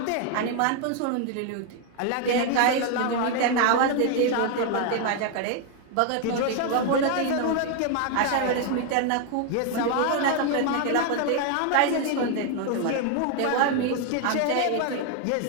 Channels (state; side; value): different; both; correlation 0.01